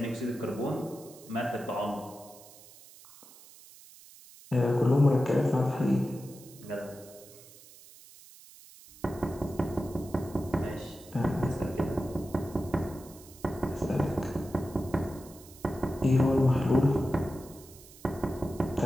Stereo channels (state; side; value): noise; right; hiss, 21 dB below the sound